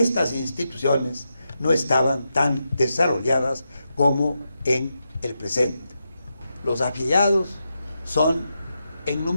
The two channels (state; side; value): inverted; both; correlation -0.86